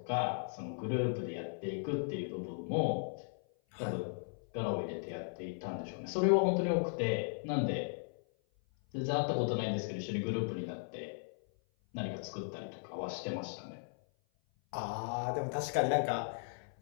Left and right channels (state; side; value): silent; right; 53 dB below the other